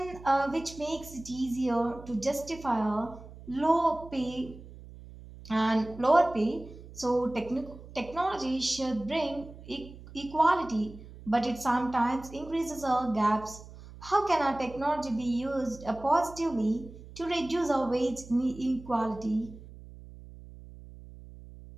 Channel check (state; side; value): noise; right; hum, 17 dB below the sound